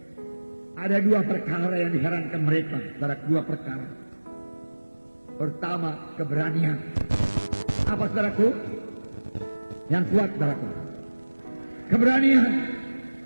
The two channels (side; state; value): both; inverted; correlation -1.00